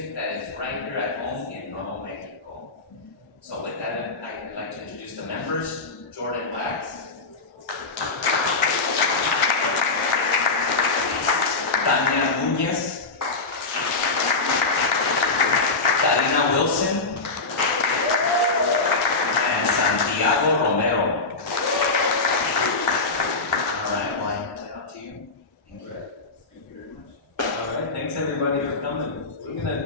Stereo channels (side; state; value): right; quieter; 3.7 dB